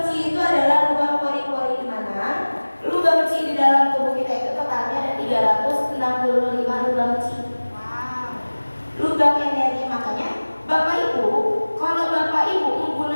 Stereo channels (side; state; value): both; inverted; correlation -1.00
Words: chi itu adalah lubang pori-pori di mana lubang chi di dalam tubuh kita itu totalnya ada 365 lubang chi. Lubang energi, makanya Bapak Ibu, kalau Bapak Ibu